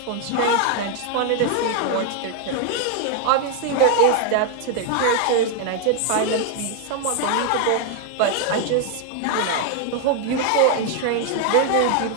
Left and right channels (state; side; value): different; both; correlation 0.01